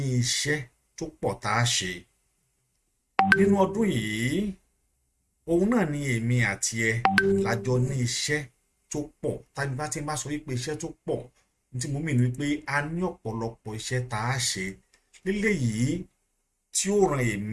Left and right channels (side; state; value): both; identical; correlation 1.00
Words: iṣẹ́ tó pọ̀ tá a ṣe. Nínú ọdún yìí, òun náà ni èmi àti ẹ lájọ ní iṣẹ́ tó pọ̀. Tàbí bá ti máa sọ wípé iṣẹ́ tó pọ̀, tí mo mìíràn wípé a ní ọ̀pọ̀lọpọ̀ iṣẹ́ tá a ṣe léléyìí tí ó ran